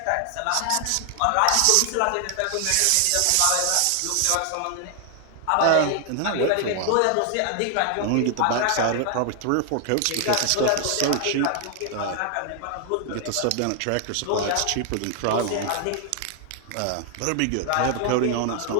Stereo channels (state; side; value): different; both; correlation 0.00